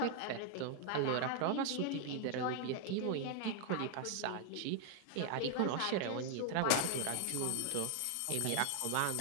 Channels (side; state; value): both; different; correlation 0.00